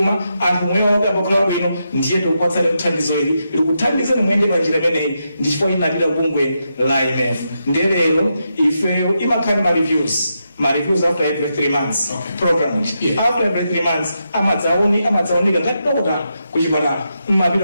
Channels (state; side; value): inverted; both; correlation -0.84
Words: anthu mweyo akakhala bwino ndiye tikupatsani kuthandizo ili likuthandize muyende panjira imeneyi ndi chifukwa inapita kubungwe la IMF ndiye lero ifeyo imakhala ma reviews after every 3 months program after every 3 months amadzaonika ngati dokotala kuchipatala